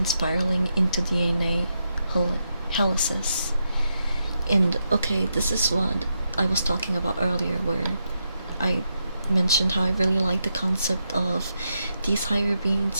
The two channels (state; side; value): inverted; both; correlation -0.83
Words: spiraling into DNA helices. And okay, this is what I was talking about earlier, where I mentioned how I really like the concept of these higher